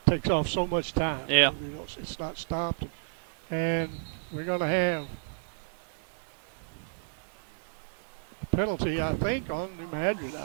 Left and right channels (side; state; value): left; silent; digital silence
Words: takes off so much time. Yeah. You know, it's not stopped. And we're going to have a penalty, I think, on New Madrid.